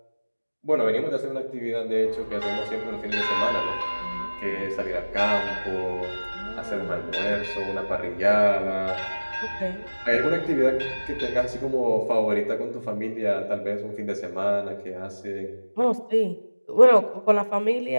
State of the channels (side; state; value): both; inverted; correlation -1.00